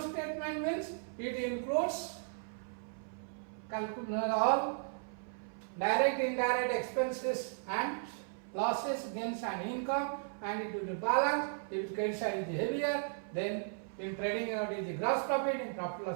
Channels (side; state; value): left; silent; 54 dB below the other